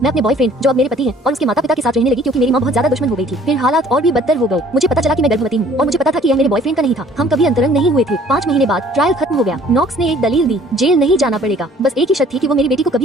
अपने बॉयफ्रेंड, जो अब मेरे पति हैं, और उसके माता पिता के साथ रहने लगी क्योंकि मेरी माँ बहुत ज्यादा दुश्मन हो गई थी। फिर हालात और भी बदतर हो गए। मुझे पता चला कि मैं गर्भवती हूँ और मुझे पता था कि यह मेरे बॉयफ्रेंड का नहीं था। हम कभी अंतरंग नहीं हुए थे। 5 महीने बाद ट्रायल खत्म हो गया। नॉक्स ने एक दलील दी, जेल नहीं जाना पड़ेगा, बस एक ही शर्त थी कि वो मेरी बेटी को कभी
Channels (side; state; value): both; normal; correlation 0.55